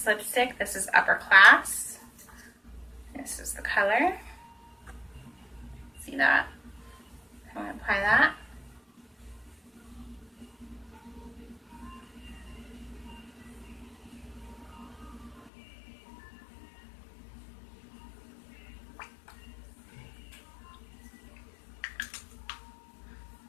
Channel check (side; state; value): right; drops out; at 15.5 s